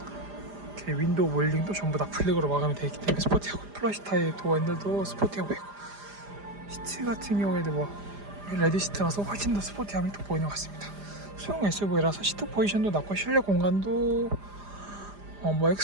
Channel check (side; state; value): left; late; 5.0 ms